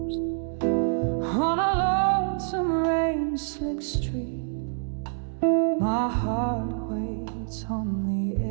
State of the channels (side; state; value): left; silent; digital silence